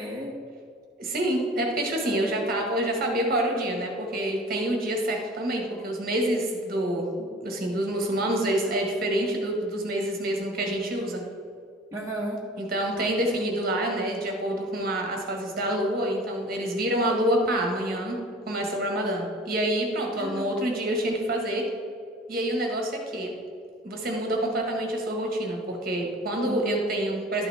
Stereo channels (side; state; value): both; normal; correlation 0.43